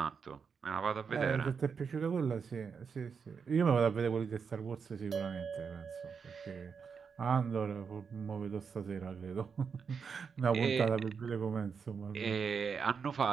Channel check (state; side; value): quieter; left; 6.0 dB